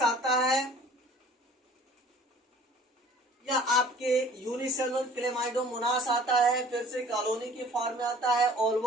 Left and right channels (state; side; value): normal; both; correlation 0.50